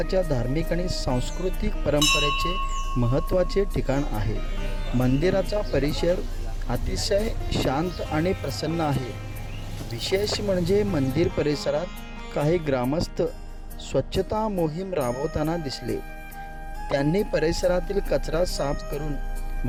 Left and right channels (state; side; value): identical; both; correlation 1.00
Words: धार्मिक आणि सांस्कृतिक परंपरेचे महत्त्वाचे ठिकाण आहे. मंदिराचा परिसर अतिशय शांत आणि प्रसन्न आहे. विशेष म्हणजे मंदिर परिसरात काही ग्रामस्थ स्वच्छता मोहीम राबवताना दिसले. त्यांनी परिसरातील कचरा साफ करून